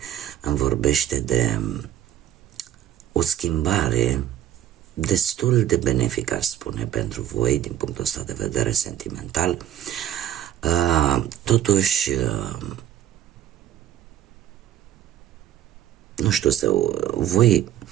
îmi vorbește de o schimbare destul de benefică, aș spune, pentru voi din punctul ăsta de vedere sentimental. Totuși, nu știu,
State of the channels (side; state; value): left; quieter; 11.7 dB